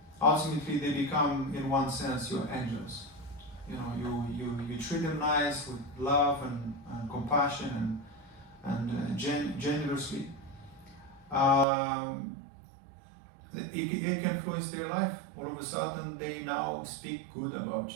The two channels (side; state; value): left; drops out; at 11.7 s